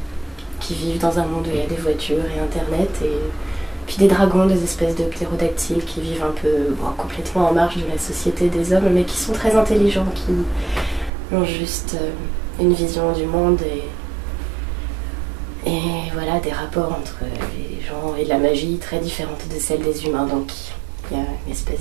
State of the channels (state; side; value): drops out; left; at 11.1 s